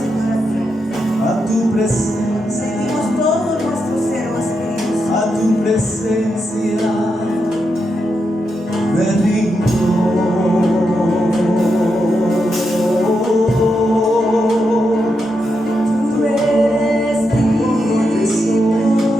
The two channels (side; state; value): both; normal; correlation 0.84